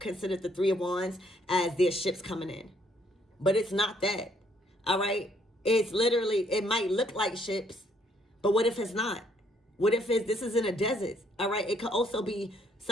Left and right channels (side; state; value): both; normal; correlation 0.68